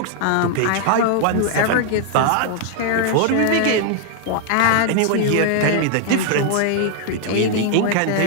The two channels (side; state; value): both; different; correlation 0.00